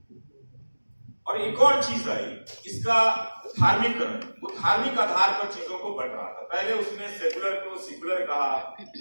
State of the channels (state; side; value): inverted; both; correlation -1.00